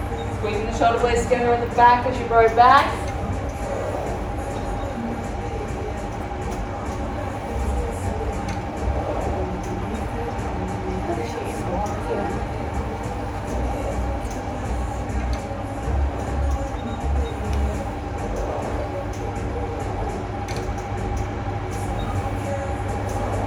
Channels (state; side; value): identical; both; correlation 1.00